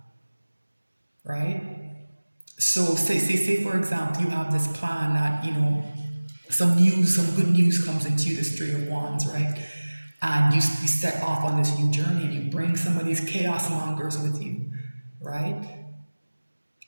right? So say for example, you have this plan that, some good news comes into you, this Three of Wands, right? And you set off on this new journey and you bring some of these chaos mongers with you, right?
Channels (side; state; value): both; inverted; correlation -1.00